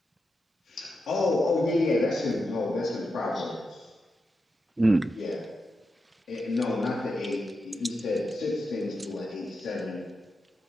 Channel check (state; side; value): normal; both; correlation 0.87